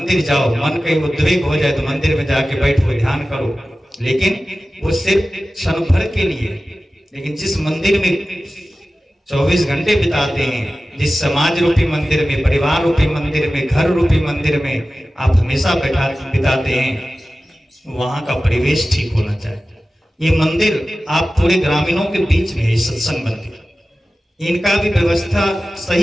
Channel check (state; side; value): normal; both; correlation 0.95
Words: जाओ, मन कहीं उद्वेग हो जाए तो मंदिर में जाके बैठो, ध्यान करो, लेकिन वो सिर्फ क्षण भर के लिए। लेकिन जिस मंदिर में 24 घंटे बिताते हैं, जिस समाज रूपी मंदिर में, परिवार रूपी मंदिर में, घर रूपी मंदिर में आप हमेशा बिताते हैं, वहां का परिवेश ठीक होना चाहिए। ये मंदिर आप पूरे ग्रामीणों के बीच में है, सत्संग मंदिर, इनका भी व्यवस्था